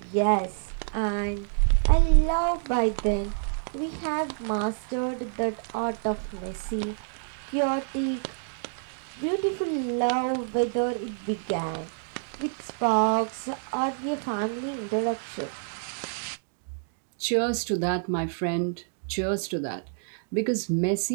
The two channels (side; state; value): left; silent; digital silence